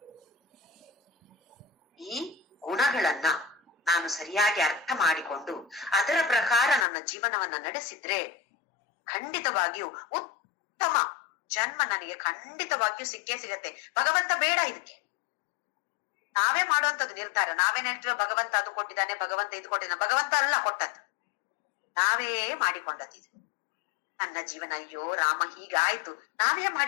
ಈ ಗುಣಗಳನ್ನ ನಾನು ಸರಿಯಾಗಿ ಅರ್ಥ ಮಾಡಿಕೊಂಡು ಅದರ ಪ್ರಕಾರ ನನ್ನ ಜೀವನವನ್ನ ನಡೆಸಿದ್ರೆ ಖಂಡಿತವಾಗಿಯೂ ಉತ್ತಮ ಜನ್ಮ ನನಗೆ ಖಂಡಿತವಾಗಿಯೂ ಸಿಕ್ಕೇ ಸಿಗತ್ತೆ. ಭಗವಂತ ಬೇಡ ಇದಕ್ಕೆ, ನಾವೇ ಮಾಡುವಂತದ್ದು ನಿರ್ಧಾರ. ನಾವೇನ್ ಹೇಳ್ತೀವ, ಭಗವಂತ ಅದು ಕೊಟ್ಟಿದ್ದಾನೆ, ಭಗವಂತ ಇದು ಕೊಟ್ಟಿದ್ದಾನೆ. ಭಗವಂತ ಅಲ್ಲ ಕೊಟ್ಟದ್ದು, ನಾವೇ ಮಾಡಿಕೊಂಡದ್ದು. ಇದು ನನ್ನ ಜೀವನ, ಅಯ್ಯೋ ರಾಮ ಹೀಗಾಯ್ತು, ನಾವೇ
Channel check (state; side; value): drops out; right; at 6.9 s